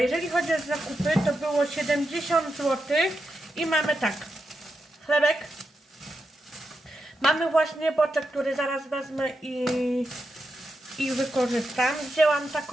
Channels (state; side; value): normal; both; correlation 0.87